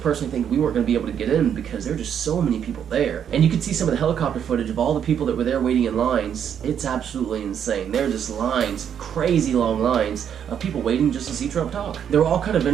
thinking we weren't going to be able to get in because there were just so many people there. And you could see some of the helicopter footage of all the people that were there waiting in lines. It's absolutely insane. There are just lines, crazy long lines, of people waiting just to see Trump talk. There were all kind of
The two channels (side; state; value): left; quieter; 8.6 dB